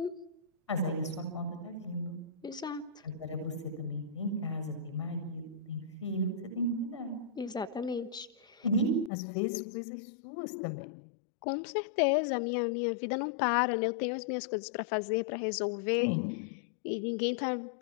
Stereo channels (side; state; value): right; drops out; at 9.1 s